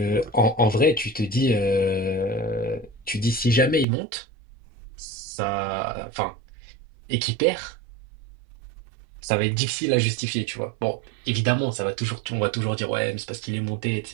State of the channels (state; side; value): drops out; left; at 3.9 s